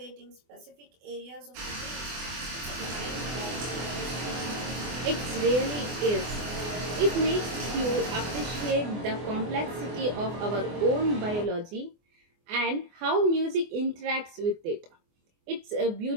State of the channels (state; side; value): late; left; 24 ms